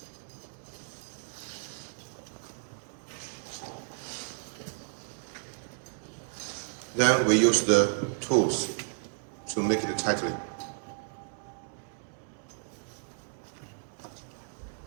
Then we use the tools to make it tightly.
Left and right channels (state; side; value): silent; left; 56 dB below the other